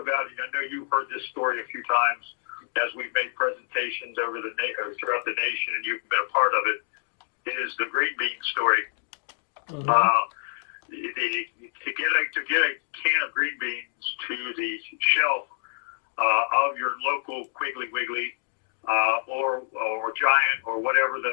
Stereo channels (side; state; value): right; silent; digital silence